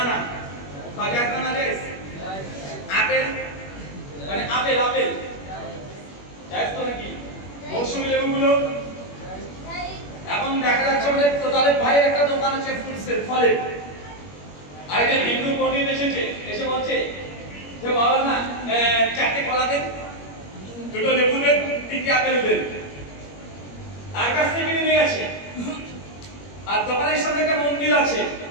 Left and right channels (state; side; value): late; right; 21 ms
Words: খাওয়া জায়েজ না জায়েজ? আপেল মানে আপেল জায়েজ তো নাকি? মৌসুমী লেবুগুলো এখন দেখা যাচ্ছে আমাদের তোতালেব ভাইয়ের একটা দোকান আছে ফ্রুটসের, ফলের। আর এই যে হিন্দু পণ্ডিত এসে বলছে যে মাওলানা 4টে কলা দেন, 2টো লেবু দেন, 3টে আপেল দেন। তার কাছ থেকে নিয়ে গেছে। আর দোকানের সামনে একটা মন্দির আছে,